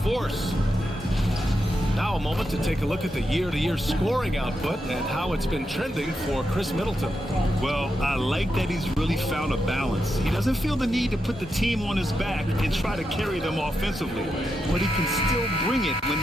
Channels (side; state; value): both; normal; correlation 0.85